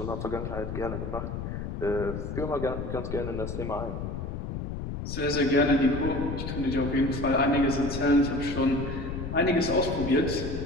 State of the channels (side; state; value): left; noise; rumble, 5 dB below the sound